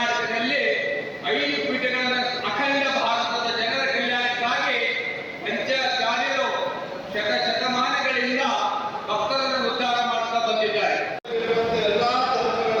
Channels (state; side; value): identical; both; correlation 1.00